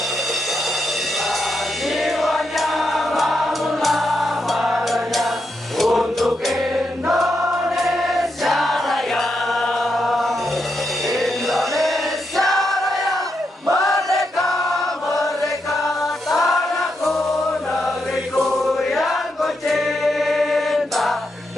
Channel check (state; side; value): normal; both; correlation 0.83